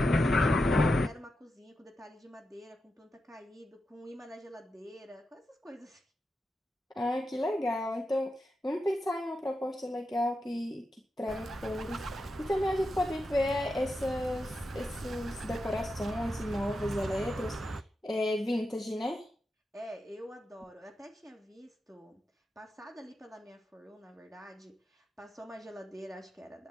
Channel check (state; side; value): normal; both; correlation 0.88